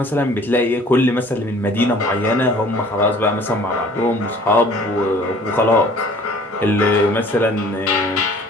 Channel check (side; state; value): both; normal; correlation 0.51